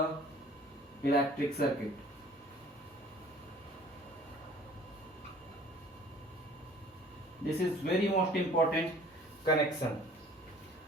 electric circuit. This is very most important connection.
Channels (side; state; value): both; normal; correlation 0.50